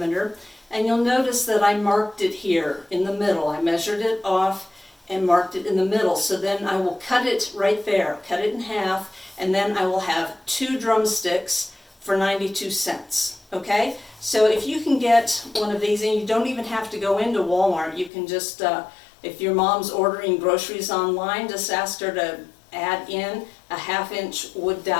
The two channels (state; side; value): drops out; right; at 18.1 s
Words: And you'll notice that I marked it here in the middle. I measured it off and marked it in the middle. So then I will cut it right there, cut it in half, and then I will have 2 drumsticks for 92 cents. Okay? So if you can get one of these, and you don't even have to go into Walmart, you can just if your mom's ordering groceries online, just ask her to add in a 1/2 inch wood